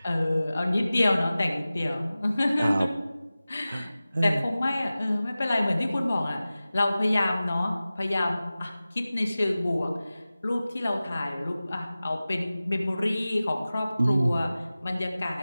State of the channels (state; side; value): inverted; both; correlation -0.96